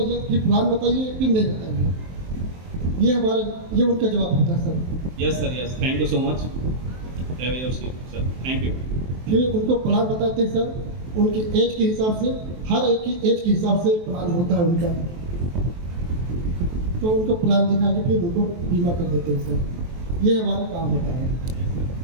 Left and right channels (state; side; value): late; left; 23 ms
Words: ये फिर प्लान बताइए, फिर नहीं बताइए। ये उनका जवाब होता है sir. Yes sir, yes, thank you so much, have your seat sir, thank you. फिर उनको प्लान बताते हैं सर, उनकी एज के हिसाब से, हर एक की एज के हिसाब से प्लान होता है उनका। तो उनको प्लान दिखा के फिर उनको बीमा कर देते हैं सर। ये हमारा काम होता है।